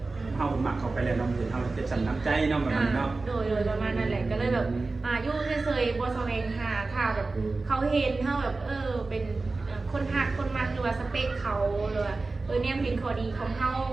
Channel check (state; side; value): quieter; left; 3.6 dB